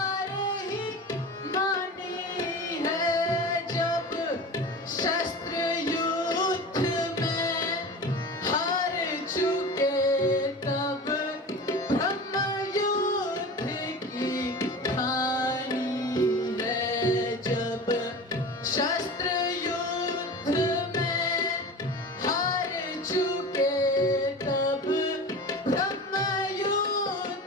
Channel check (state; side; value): normal; both; correlation 0.33